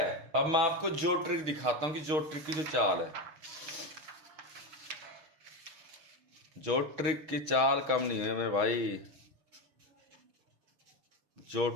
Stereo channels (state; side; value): late; left; 6.3 ms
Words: अब मैं आपको जो ट्रिक दिखाता हूं कि जो ट्रिक की जो चाल है, जो ट्रिक की चाल कम नहीं है मेरे भाई। जो